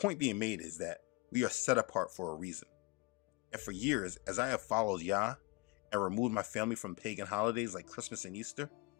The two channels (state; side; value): quieter; right; 24.7 dB